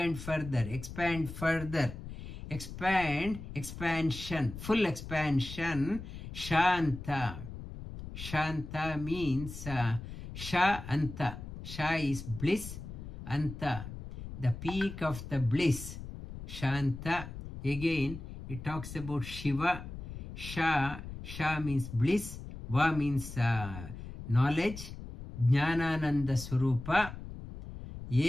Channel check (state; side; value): noise; left; rumble, 10 dB below the sound